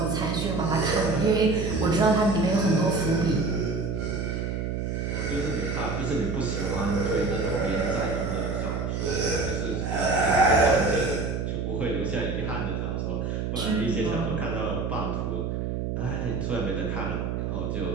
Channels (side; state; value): right; noise; hum, 2 dB below the sound